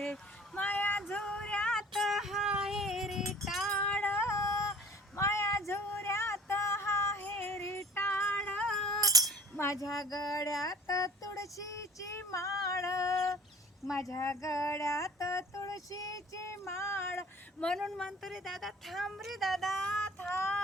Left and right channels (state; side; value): normal; both; correlation 0.48